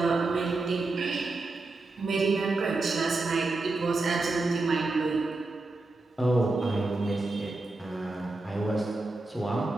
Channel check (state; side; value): quieter; left; 3.2 dB